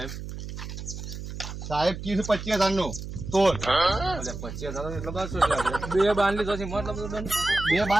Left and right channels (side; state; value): right; noise; hum, 9 dB below the sound